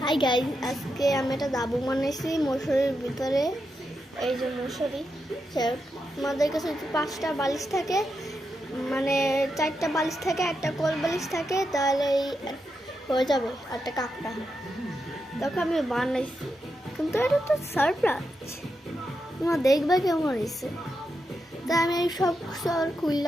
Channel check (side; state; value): both; normal; correlation 0.85